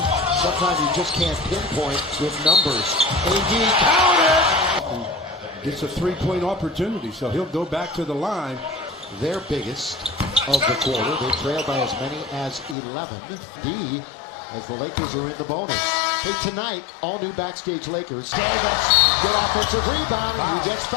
Sometimes you just can't pinpoint with numbers. AD counted. Gets a 3-point opportunity, so he'll go back to the line. Their biggest of the quarter. They trail by as many as 11. D, as the Lakers are in the bonus. Hey, tonight, all new Backstage Lakers. Davis, good offensive rebound, and he gets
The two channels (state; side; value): drops out; right; at 12.8 s